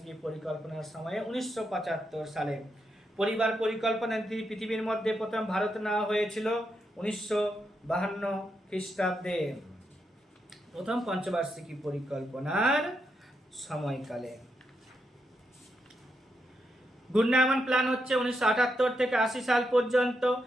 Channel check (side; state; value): both; normal; correlation 0.83